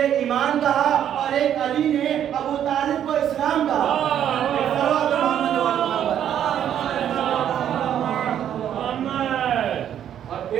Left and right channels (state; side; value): quieter; left; 10.0 dB